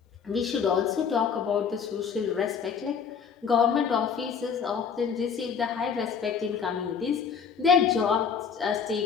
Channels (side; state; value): right; quieter; 6.6 dB